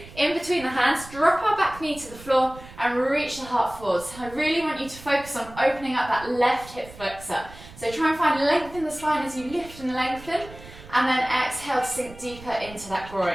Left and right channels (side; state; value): right; noise; rumble, 18 dB below the sound